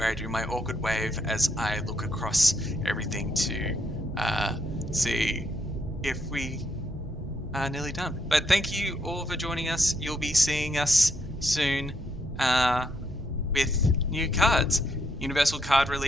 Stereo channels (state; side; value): normal; both; correlation 0.75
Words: I do my awkward wave as I look across everything to see if we are nearly done. But thank you all for joining us. You'll be seeing us soon with new cards. Universal Card